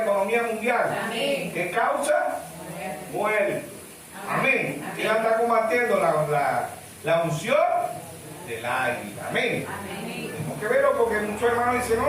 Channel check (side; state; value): both; identical; correlation 1.00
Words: economía mundial. Amén. ¿Qué causa? Muerte. Amén. ¿Quién está combatiendo? La unción del águila. Amén. Amén. Tenemos que verlo porque muchos hermanos dicen,